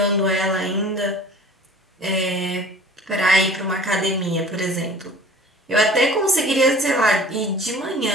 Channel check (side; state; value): both; normal; correlation 0.46